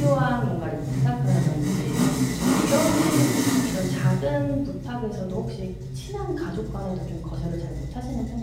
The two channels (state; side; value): identical; both; correlation 1.00